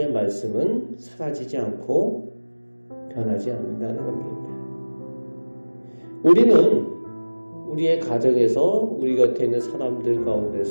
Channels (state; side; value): inverted; both; correlation -1.00